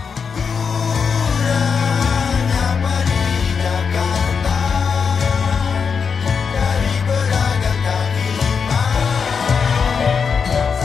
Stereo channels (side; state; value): right; quieter; 6.0 dB